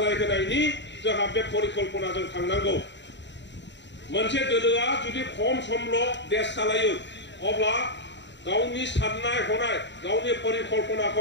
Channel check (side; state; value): right; late; 0.52 ms